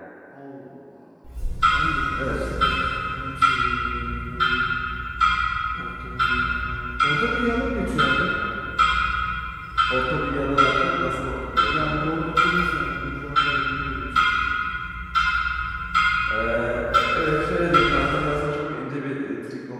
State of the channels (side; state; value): both; identical; correlation 1.00